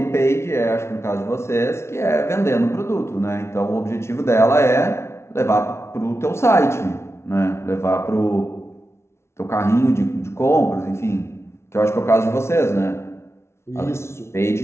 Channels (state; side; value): late; right; 0.13 ms